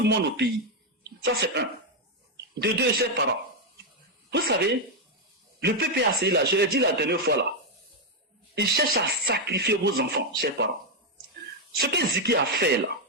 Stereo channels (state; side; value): normal; both; correlation 0.02